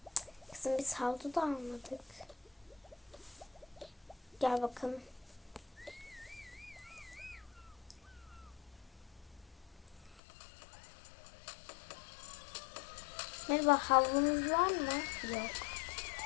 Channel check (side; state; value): right; drops out; at 10.2 s